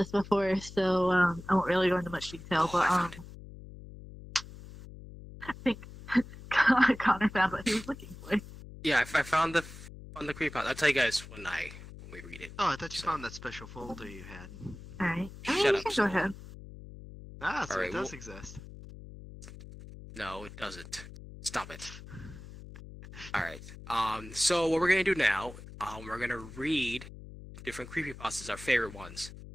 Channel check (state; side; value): noise; left; hum, 15 dB below the sound